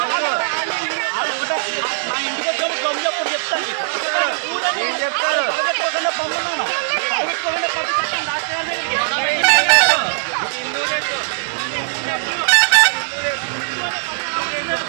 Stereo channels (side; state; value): left; silent; 60 dB below the other